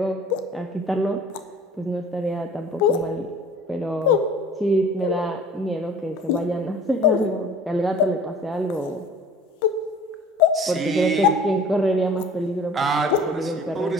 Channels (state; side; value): normal; both; correlation 0.46